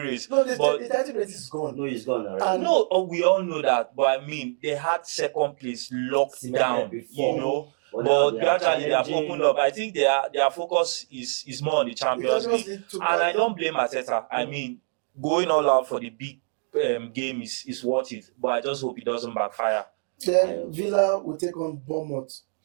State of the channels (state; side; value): silent; left; 62 dB below the other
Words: No, the title race is gone. No, it's gone already. We all know that, but I mean, they had second place locked down before. But gradually they have opened up. I think their focus is more on the Champions League. And I don't blame Arteta. I mean, going all out for the big game is worth it. But I just hope it doesn't backfire. Then Villa will take on Bournemouth.